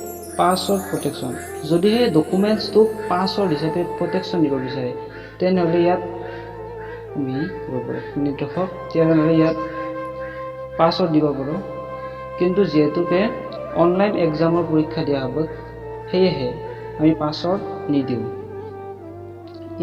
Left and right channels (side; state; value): both; identical; correlation 1.00